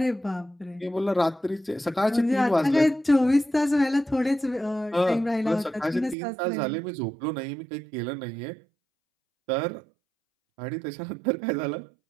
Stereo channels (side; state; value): left; drops out; at 6.2 s